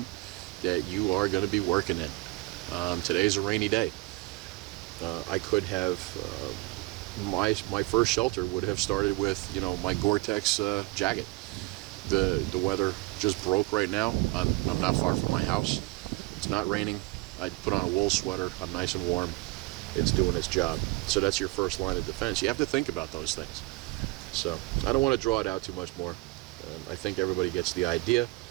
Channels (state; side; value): quieter; left; 22.3 dB